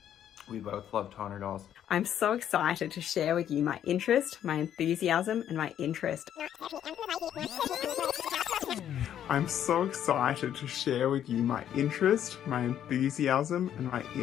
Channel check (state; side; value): quieter; right; 10.3 dB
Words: we both love Tonner dolls. I'm so excited to share with you my interest, my enthusiasm, and my interest. I'm so excited to share with you my interest, my enthusiasm, and my